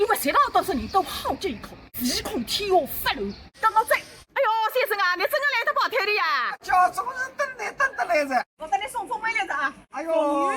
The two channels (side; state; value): both; identical; correlation 1.00